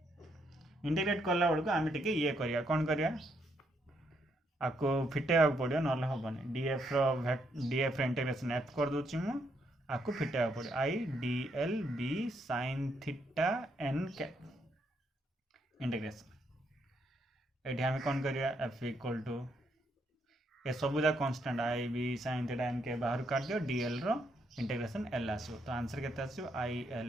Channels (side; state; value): both; normal; correlation 0.75